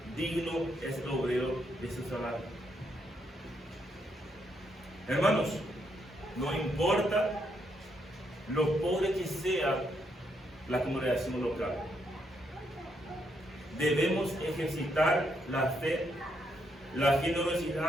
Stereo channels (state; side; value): normal; both; correlation 0.77